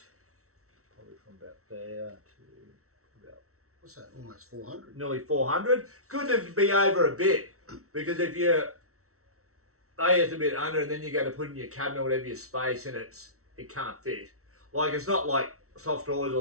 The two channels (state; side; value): late; left; 0.64 ms